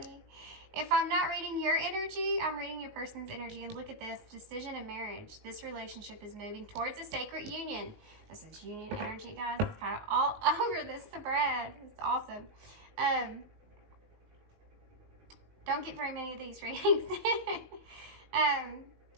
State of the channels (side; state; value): left; late; 19 ms